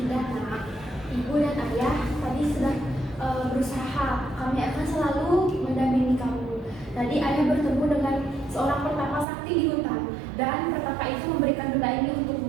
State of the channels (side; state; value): left; drops out; at 9.2 s